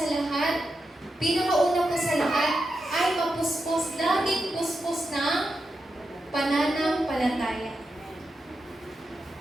lahat, pinakauna po sa lahat, ay mapuspos, laging puspos ng pananampalataya.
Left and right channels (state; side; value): normal; both; correlation 0.88